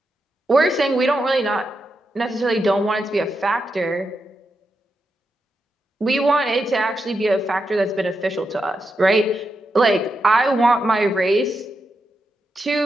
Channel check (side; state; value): both; normal; correlation 0.86